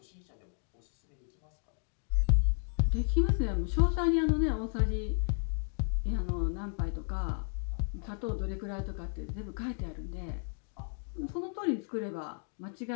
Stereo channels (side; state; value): right; silent; 56 dB below the other